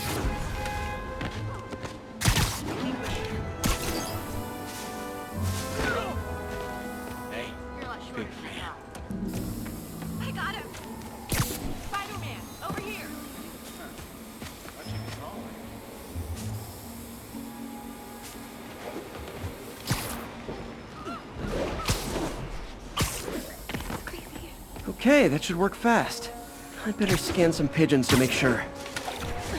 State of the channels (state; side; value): identical; both; correlation 1.00